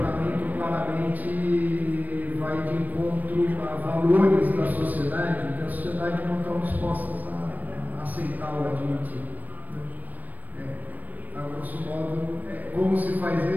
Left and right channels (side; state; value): left; late; 0.083 ms